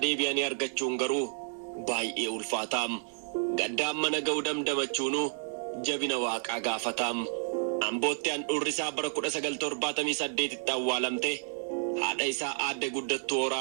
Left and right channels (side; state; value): left; silent; 57 dB below the other